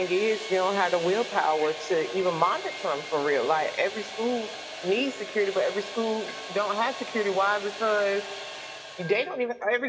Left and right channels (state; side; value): identical; both; correlation 1.00